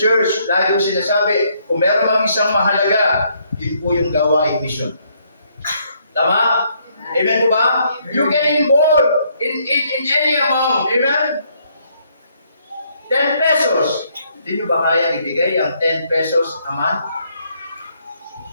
lagi kong sinasabi, kung meron mang isang mahalaga, yun po yung gawain mission. Tama? Amen po ba? You can involve in any amount. Amen? 10 pesos. Hindi nyo ba kaya ibigay ang 10 pesos a month?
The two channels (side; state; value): both; inverted; correlation -0.70